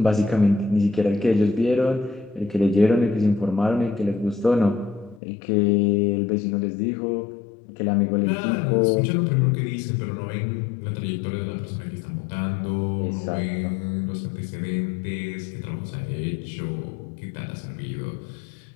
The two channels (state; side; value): drops out; right; at 5.2 s